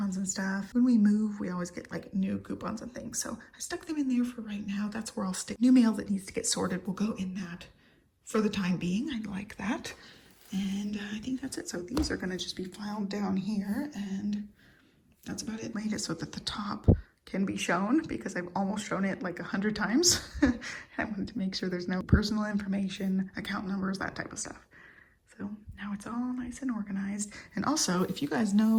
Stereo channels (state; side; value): identical; both; correlation 1.00